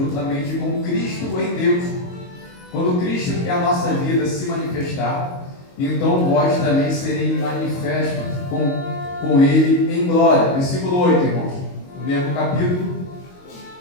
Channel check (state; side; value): late; right; 22 ms